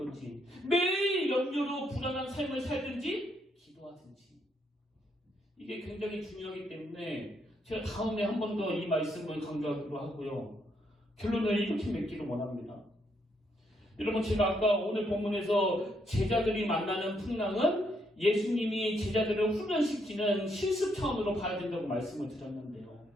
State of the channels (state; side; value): normal; both; correlation 0.75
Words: 매일 염려로 불안한 삶을 살든지 기도하든지. 이게 굉장히 중요하기 때문에 제가 다음에 한 번 더 이 말씀을 강조하기로 하고요. 결론을 이렇게 맺기를 원합니다. 여러분, 제가 아까 오늘 본문에서 제자들이 만나는 풍랑은 예수님이 제자들을 훈련시키는 실습 차원으로 봐야 된다고 말씀을 드렸는데요.